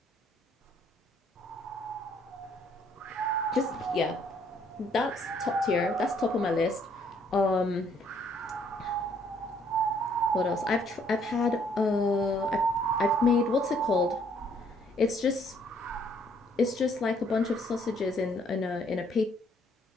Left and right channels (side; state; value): both; normal; correlation 0.65